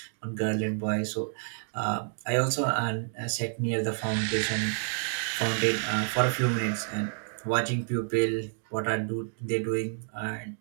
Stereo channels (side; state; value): left; silent; 58 dB below the other